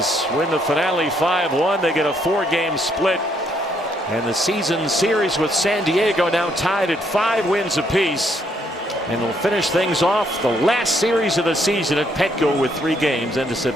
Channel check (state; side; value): normal; both; correlation 0.71